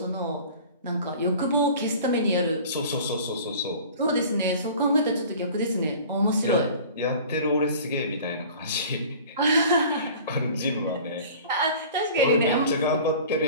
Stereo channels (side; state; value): both; inverted; correlation -0.43